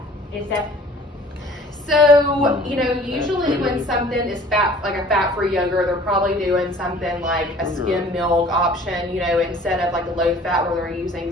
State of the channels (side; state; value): both; normal; correlation 0.50